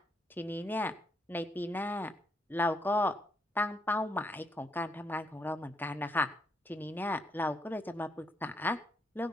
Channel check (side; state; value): both; normal; correlation 0.76